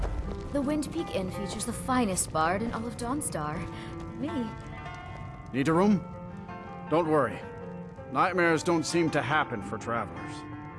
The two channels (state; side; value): identical; both; correlation 1.00